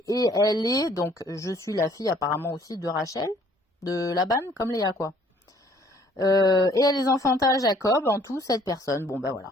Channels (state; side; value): normal; both; correlation 0.59